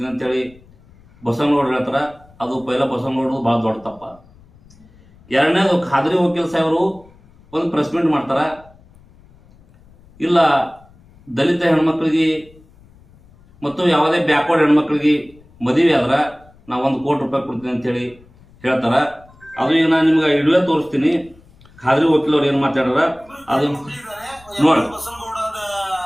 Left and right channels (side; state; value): left; noise; rumble, 27 dB below the sound